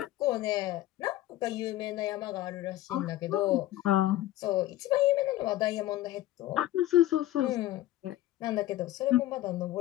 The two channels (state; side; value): quieter; right; 14.9 dB